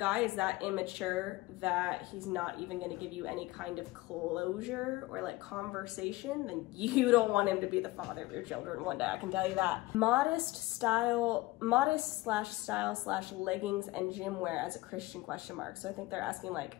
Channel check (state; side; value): quieter; right; 19.7 dB